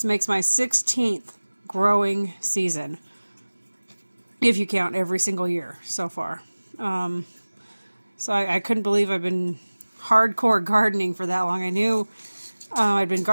makes my 16th growing season, if you count every single year so far. So I couldn't believe I've been hardcore gardening for that long. I knew I'd been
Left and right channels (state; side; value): inverted; both; correlation -1.00